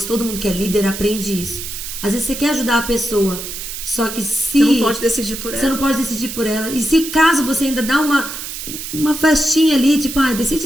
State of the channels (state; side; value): noise; right; hiss, 8 dB below the sound